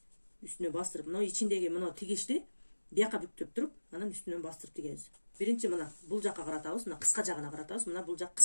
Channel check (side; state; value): both; inverted; correlation -1.00